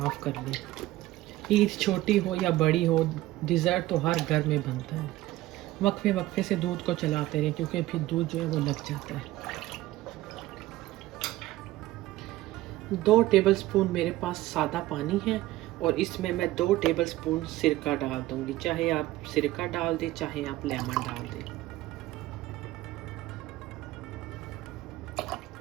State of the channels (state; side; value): quieter; left; 16.7 dB